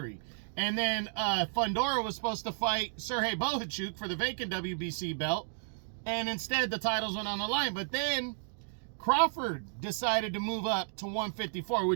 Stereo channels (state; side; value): silent; left; digital silence